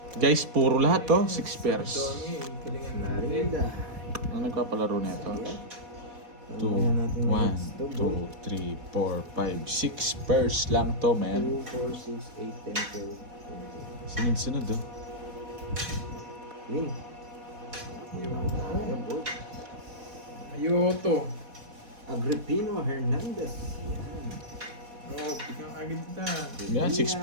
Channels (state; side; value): late; left; 4.1 ms